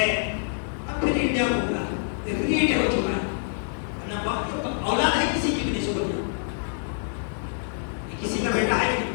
اب پھر انڈیا گھوم رہا ہے، ریٹ ہو چکا ہے، اولاد ہے کسی کی بھی نہیں شکر کیا، کسی کا بیٹا ہے نہیں،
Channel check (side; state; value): right; silent; digital silence